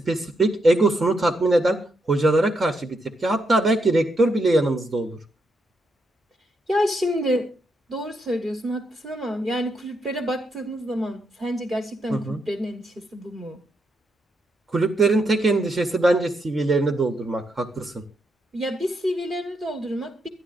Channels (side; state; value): both; normal; correlation 0.80